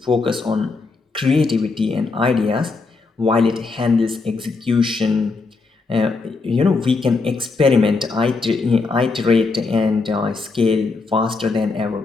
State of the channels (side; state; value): right; quieter; 4.0 dB